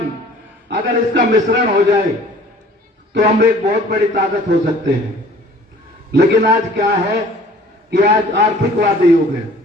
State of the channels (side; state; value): both; normal; correlation 0.51